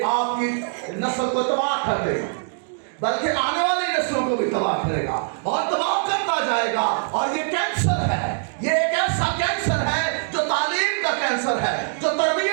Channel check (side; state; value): left; silent; digital silence